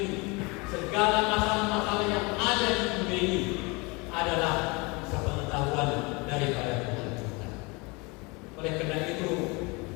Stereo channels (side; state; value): right; quieter; 27.3 dB